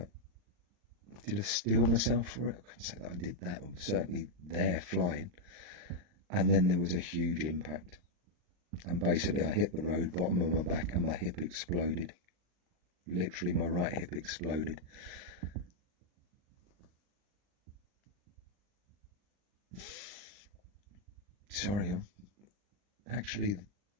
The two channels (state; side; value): late; left; 40 ms